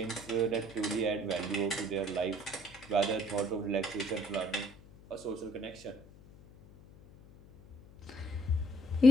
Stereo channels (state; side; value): noise; left; hum, 21 dB below the sound